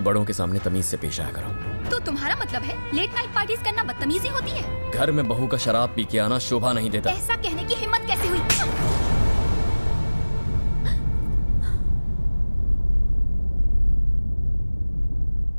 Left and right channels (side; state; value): both; inverted; correlation -1.00